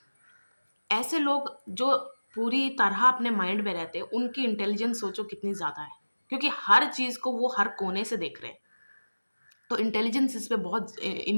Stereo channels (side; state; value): both; inverted; correlation -1.00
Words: ऐसे लोग जो पूरी तरह अपने माइंड में रहते हैं, उनकी इंटेलिजेंस सोचो कितनी ज़्यादा है। क्योंकि हर चीज़ को वो हर कोने से देख रहे हैं। तो इंटेलिजेंस